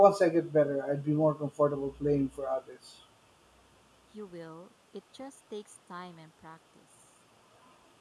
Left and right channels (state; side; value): identical; both; correlation 1.00